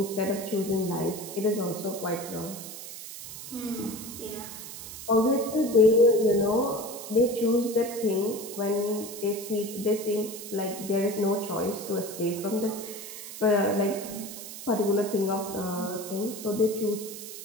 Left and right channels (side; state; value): right; noise; hiss, 11 dB below the sound